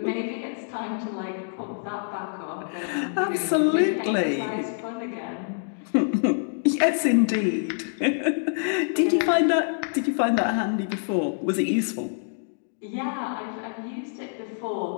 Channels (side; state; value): right; silent; digital silence